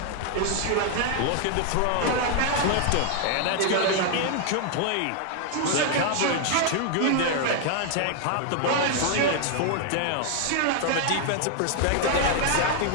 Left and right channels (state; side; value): different; both; correlation 0.00